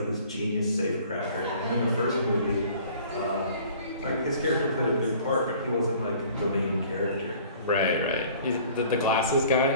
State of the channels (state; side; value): inverted; both; correlation -0.51